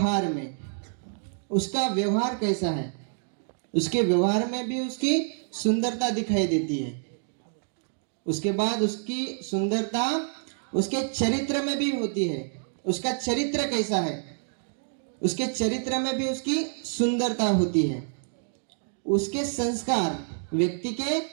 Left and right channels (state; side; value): silent; left; digital silence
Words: में। उसका व्यवहार कैसा है, उसके व्यवहार में भी उसकी सुंदरता दिखाई देती है। उसके बाद उसकी सुंदरता उसके चरित्र में भी होती है। उसका चरित्र कैसा है, उसके चरित्र में भी उसकी सुंदरता होती है। उसके संस्कार, व्यक्ति के